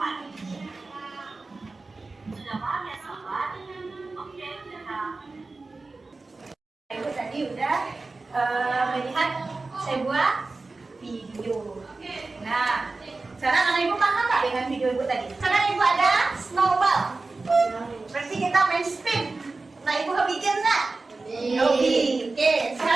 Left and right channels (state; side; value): quieter; left; 3.6 dB